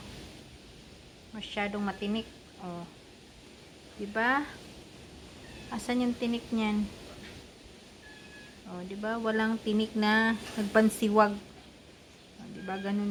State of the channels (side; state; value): both; identical; correlation 1.00